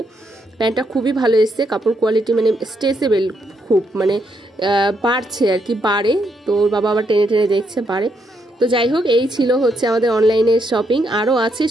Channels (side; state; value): both; normal; correlation 0.77